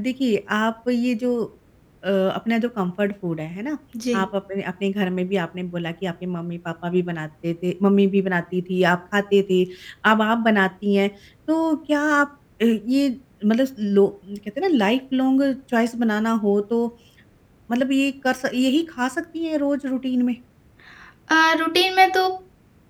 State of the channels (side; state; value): both; identical; correlation 1.00